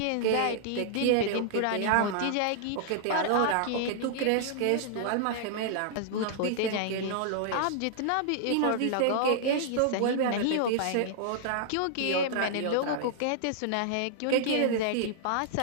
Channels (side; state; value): both; different; correlation -0.01